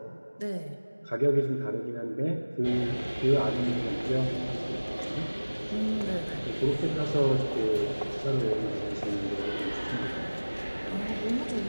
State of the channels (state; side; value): inverted; both; correlation -1.00